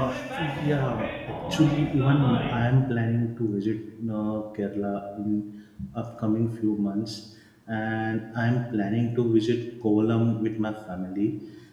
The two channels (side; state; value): both; identical; correlation 1.00